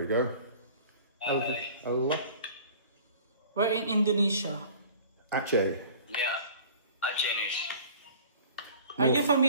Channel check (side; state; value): both; inverted; correlation -0.46